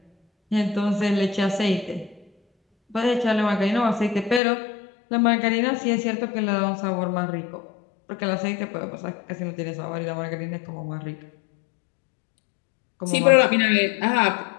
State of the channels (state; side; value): drops out; right; at 4.4 s